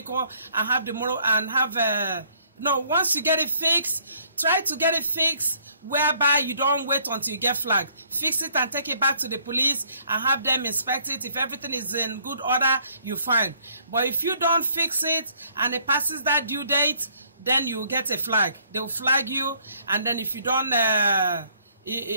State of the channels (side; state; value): both; inverted; correlation -0.63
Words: and have the motor and have no, once you get it fixed, try to get it fixed whereby you don't wait until you get flagged. Fix it and take it back to the police and have them inspect it. If everything is in good order, you're fine. But if you don't fix it and it passes that due date, then you get a flag. They'll flag you, and then if you don't